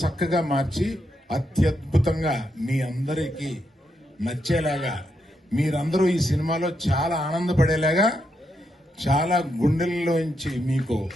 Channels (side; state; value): both; normal; correlation 0.81